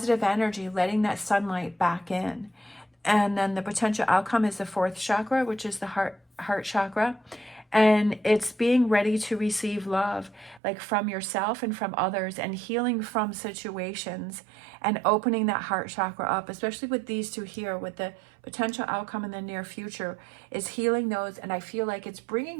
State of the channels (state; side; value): drops out; left; at 10.6 s